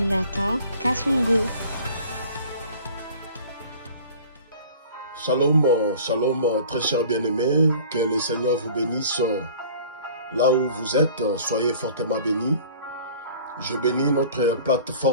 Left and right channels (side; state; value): both; inverted; correlation -0.46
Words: Kassongo. Shalom, shalom, très chers bien-aimés, que le Seigneur vous bénisse là où vous êtes, soyez fortement bénis. Je bénis notre